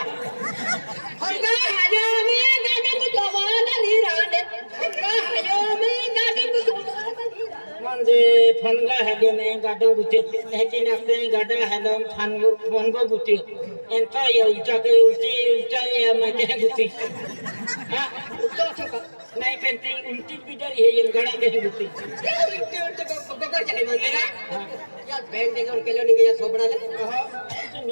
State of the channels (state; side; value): inverted; both; correlation -1.00